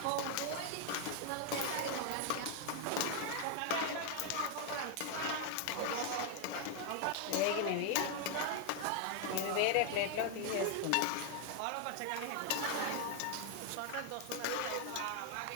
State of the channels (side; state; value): both; different; correlation 0.00